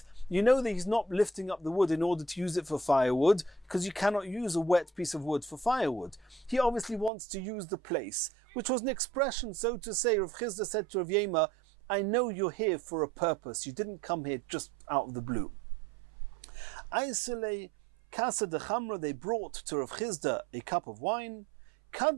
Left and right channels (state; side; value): drops out; left; at 7.1 s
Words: You know that he's not lifting up the wood in order to use it for firewood, because you cannot use a wet piece of wood for firewood. He obviously wants to use the place, which was an expression, so to say. Rav Chizda said to Rav Yema, I know you're here for a purpose. You didn't come here just out of the blue. Aisele Kasa de Chamra, they brought to Rav Chizda a cup of wine.